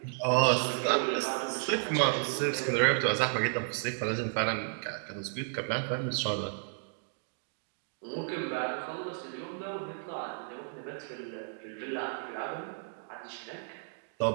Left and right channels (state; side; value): silent; left; digital silence